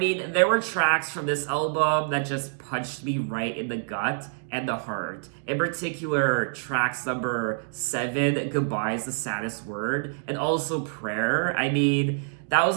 there were tracks from this album that just punched me right in the gut and the heart. In particular, tracks number 7, Goodbye is the Saddest Word, and also Prayer. I mean, that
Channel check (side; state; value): left; silent; digital silence